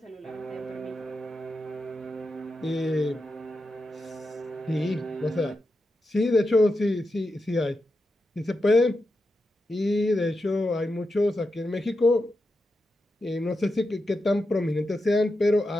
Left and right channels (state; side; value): normal; both; correlation 0.88